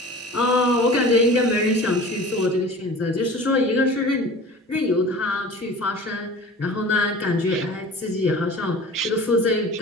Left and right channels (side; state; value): both; normal; correlation 0.40